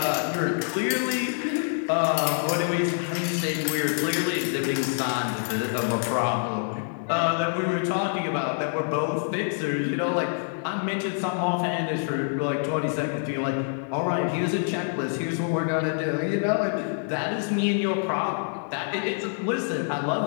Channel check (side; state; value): right; silent; 60 dB below the other